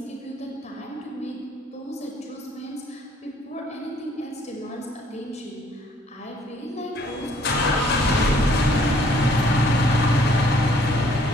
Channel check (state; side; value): normal; both; correlation 0.62